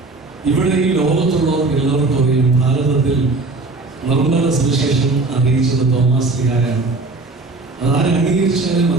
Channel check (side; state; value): left; quieter; 3.4 dB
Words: ഇവിടെ ഈ ലോകത്തുള്ളവർ എല്ലാവർക്കും അറിയാം, ഭാരതത്തിൽ നിർമ്മല സുവിശേഷം അറിയിച്ചത് തോമാസ് ശ്ലീഹായാണ്. അതാരെ അംഗീകരിച്ചാലും